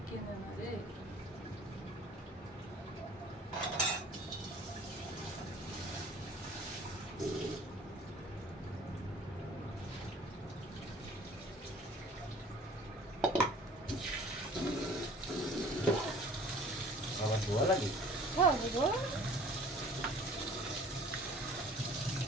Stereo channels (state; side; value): normal; both; correlation 0.49